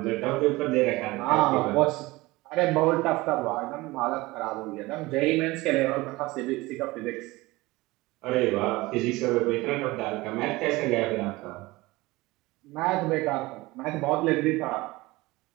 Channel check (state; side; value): quieter; left; 20.9 dB